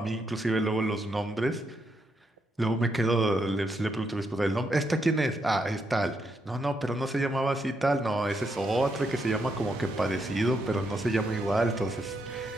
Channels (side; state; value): both; normal; correlation 0.79